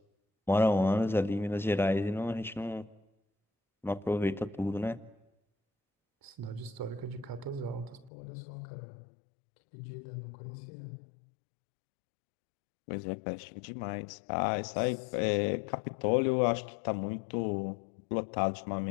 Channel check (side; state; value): right; drops out; at 8.1 s